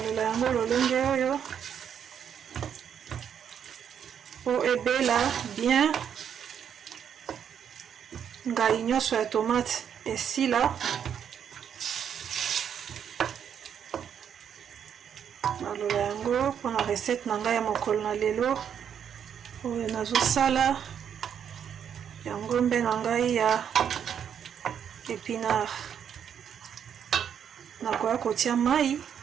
yango lolenge oyo po ebela bien. ngai nyonso ya tomate esila. Naloba yango mpona recette na ngai ya mokolo na lelo oyo nazosala ya ngombe na ngai ya épinard. Nakoya kotia mai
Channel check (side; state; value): left; quieter; 8.3 dB